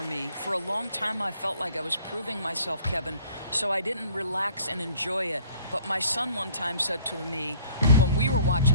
me? For a long time, I felt like I was proving myself, Kevin, so I didn't relax and enjoy it. But my son one time said to me, when we were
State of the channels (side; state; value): both; inverted; correlation -0.54